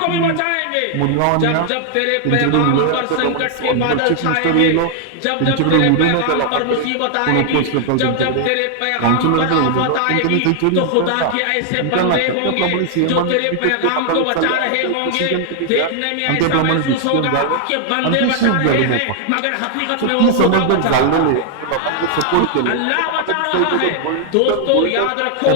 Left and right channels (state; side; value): different; both; correlation 0.00